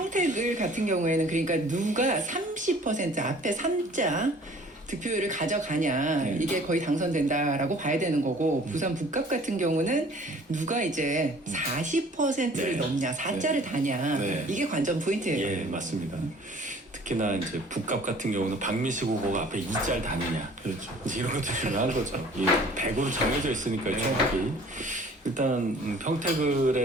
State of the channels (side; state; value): both; normal; correlation 0.51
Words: 같은 경우에는 그러니까 누가 30% 앞에 3자 득표율을 가져가냐 이게 거의 당선된다라고 봐야 되는 거고 부산 북갑 같은 경우는 누가 이제 40%를 넘냐 4자를 다냐 이게 관전 포인트예요. 예, 맞습니다. 특히나 이제 북갑 같은 경우는 박미식 후보가 앞에 2짤 다느냐. 그렇죠. 이제 이런 것도 중요한 거죠. 이 100으로 정해져 있으니까요, 총합이. 일단